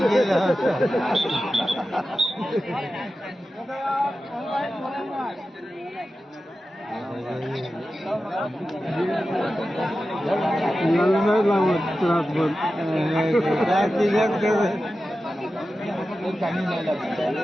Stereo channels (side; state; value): both; normal; correlation 0.93